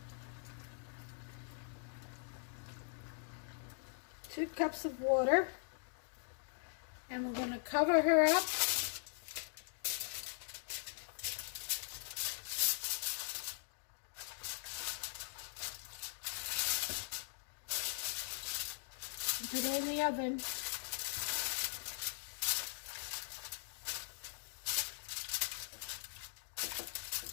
2 cups of water. And we're going to cover her up. And put it in the oven.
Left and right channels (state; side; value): silent; right; digital silence